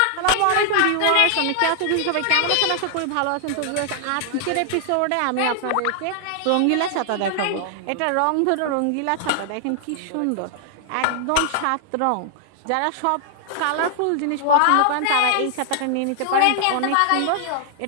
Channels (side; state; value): both; different; correlation 0.00